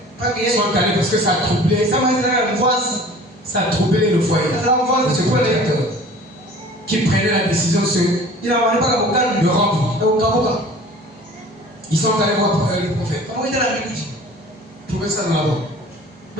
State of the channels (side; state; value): both; normal; correlation 0.46